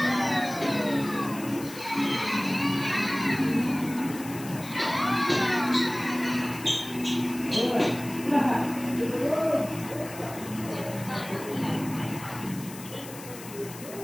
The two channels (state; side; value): noise; left; hiss, 15 dB below the sound